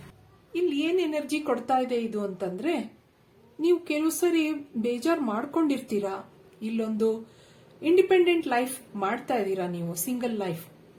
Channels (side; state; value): both; identical; correlation 1.00